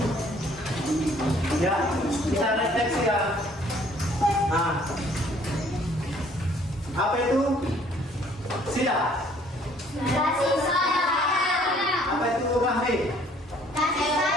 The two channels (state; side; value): normal; both; correlation 0.59